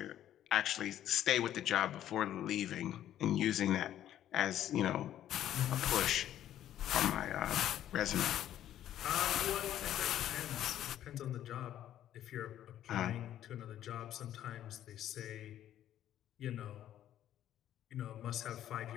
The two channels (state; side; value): quieter; right; 11.7 dB